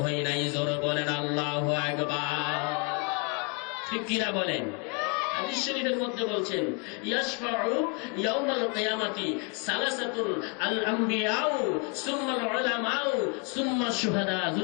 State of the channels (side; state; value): right; quieter; 35.2 dB